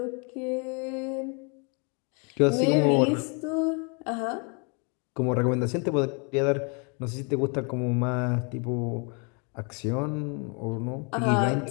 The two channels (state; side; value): quieter; right; 35.2 dB